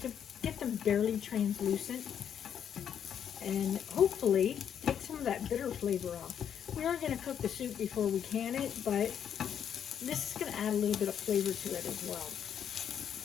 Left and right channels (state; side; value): quieter; right; 8.7 dB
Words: to get them barely translucent and hopefully take some of that bitter flavor off. We are going to cook the soup before we can it, but this is going to add a little bit of flavor to it as well.